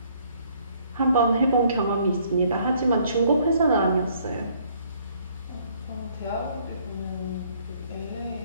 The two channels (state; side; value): inverted; both; correlation -0.63